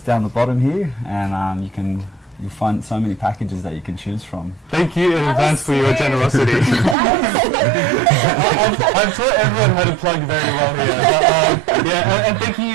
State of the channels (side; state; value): left; drops out; at 7.0 s